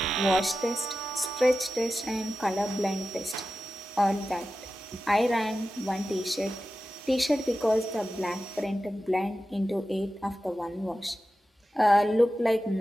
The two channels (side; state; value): both; normal; correlation 0.93